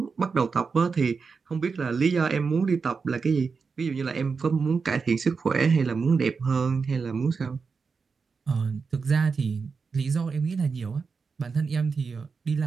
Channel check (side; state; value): left; quieter; 5.1 dB